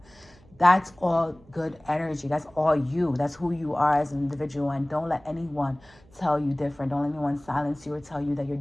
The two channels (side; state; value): right; noise; hum, 27 dB below the sound